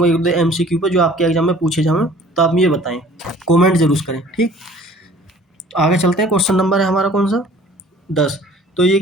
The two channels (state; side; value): normal; both; correlation 0.51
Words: एक दो MCQ पर, जो आपके एग्जाम में पूछे जाएँ, तो आप ये बताएं, कॉमेंट जरूर करें। ठीक, आगे चलते हैं, क्वेश्चन नंबर है हमारा कौन सा, 10। तो ये